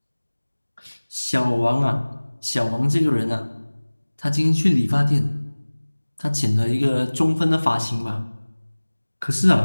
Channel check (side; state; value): both; inverted; correlation -1.00